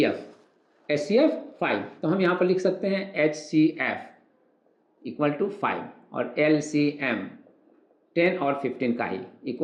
5, तो हम यहाँ पर लिख सकते हैं HCF इक्वल टू 5 और LCM 10 और 15 का ही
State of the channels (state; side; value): identical; both; correlation 1.00